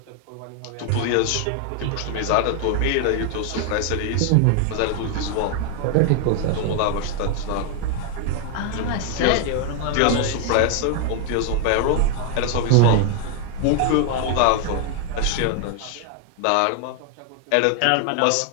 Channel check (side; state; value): both; different; correlation 0.01